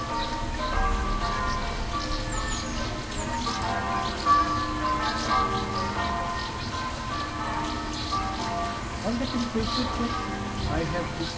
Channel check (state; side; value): identical; both; correlation 1.00